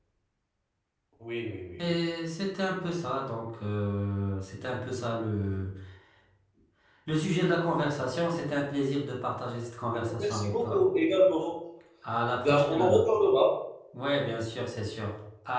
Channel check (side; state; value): both; identical; correlation 1.00